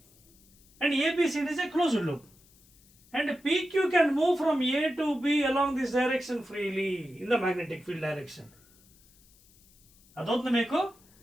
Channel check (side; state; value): left; noise; hiss, 29 dB below the sound